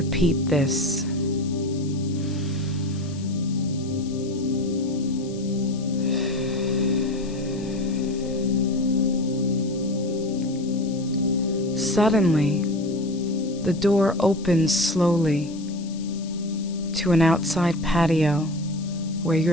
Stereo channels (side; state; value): left; noise; hiss, 19 dB below the sound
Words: this. Suddenly, the door opens slowly to an outside patio where